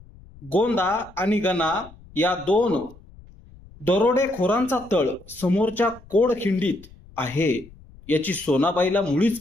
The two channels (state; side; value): noise; left; rumble, 22 dB below the sound